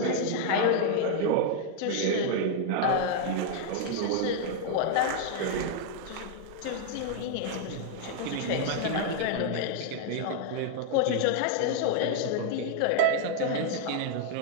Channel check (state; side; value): different; both; correlation 0.00